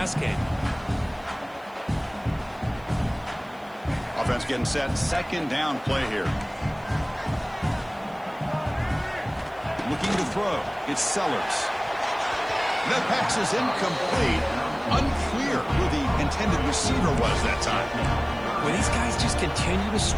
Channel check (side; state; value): right; noise; hiss, 30 dB below the sound